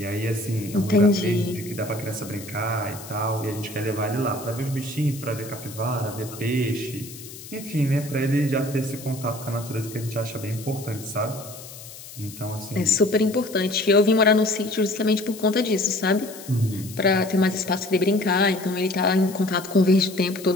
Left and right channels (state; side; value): noise; left; hiss, 15 dB below the sound